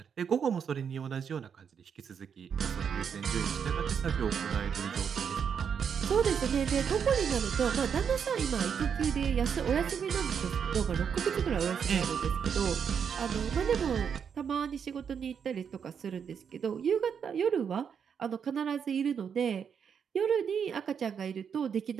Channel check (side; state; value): left; quieter; 7.2 dB